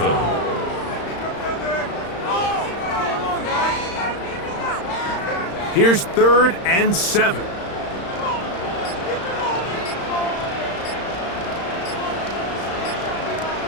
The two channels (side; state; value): right; late; 35 ms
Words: Here's 3rd and 7.